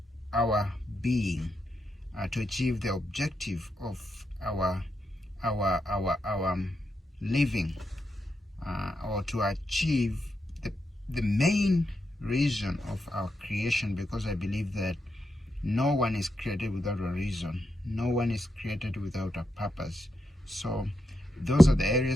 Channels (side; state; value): both; normal; correlation 0.84